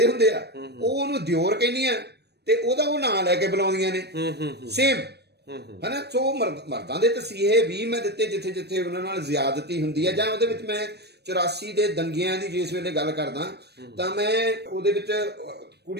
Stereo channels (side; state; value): left; late; 0.48 ms